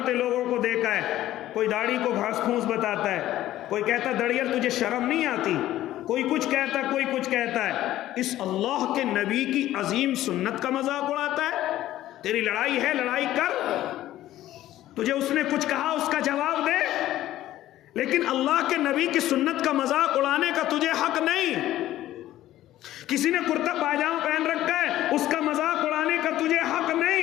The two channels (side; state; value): right; quieter; 14.1 dB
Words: لوگوں کو دیکھا ہے، کوئی داڑھی کو گھاس پھوس بتاتا ہے، کوئی کہتا دڑیل تجھے شرم نہیں آتی، کوئی کچھ کہتا ہے، کوئی کچھ کہتا ہے۔ اس اللہ کے نبی کی عظیم سنت کا مذاق اڑاتا ہے۔ تیری لڑائی ہے، لڑائی کر، تجھے اس نے کچھ کہا اس کا جواب دے، لیکن اللہ کے نبی کی سنت کا مذاق اڑانے کا تجھے حق نہیں۔ کسی نے کرتا پاجامہ پہن رکھا ہے، اس کا مذاق اڑانے کا تجھے حق